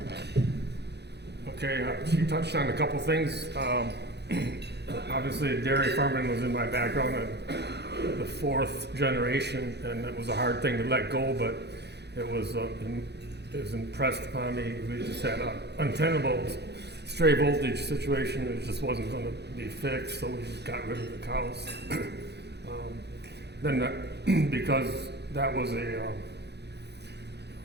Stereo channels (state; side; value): late; left; 0.49 ms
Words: Okay, she touched on a couple things. Obviously, dairy farming was in my background, the fourth generation, and it was a hard thing to let go, but it was impressed upon me. We just had an untenable stray voltage situation. It just wasn't going to be fixed, so we just got rid of the cows. Because that was a